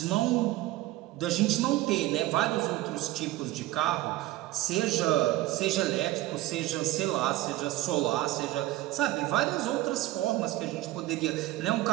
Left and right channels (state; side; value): quieter; left; 16.6 dB